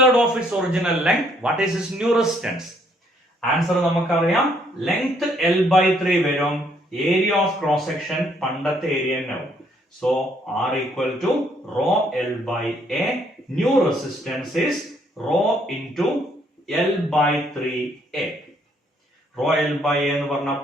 of its original length. What is its new resistance? Answer നമുക്കറിയാം, length l/3 വരും, area of cross section പണ്ടത്തെ area തന്നെയാവും. So r equal to rho l by a. New resistance is rho into l by 3a. Rho l by a എന്ന് പറഞ്ഞ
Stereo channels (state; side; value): normal; both; correlation 0.67